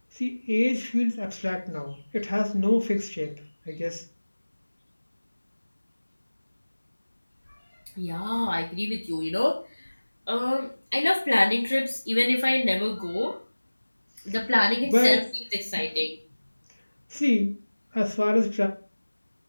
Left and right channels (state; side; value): inverted; both; correlation -1.00